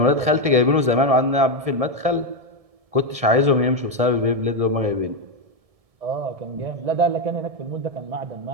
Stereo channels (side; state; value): left; late; 1.7 ms